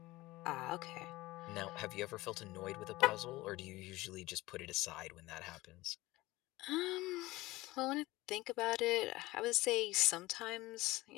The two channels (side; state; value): right; quieter; 19.2 dB